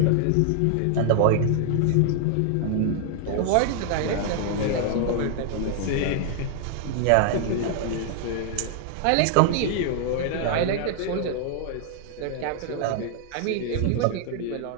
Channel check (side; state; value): both; different; correlation 0.00